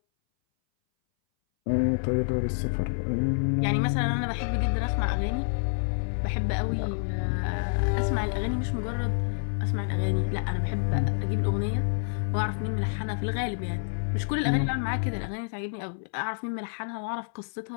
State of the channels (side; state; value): right; silent; 59 dB below the other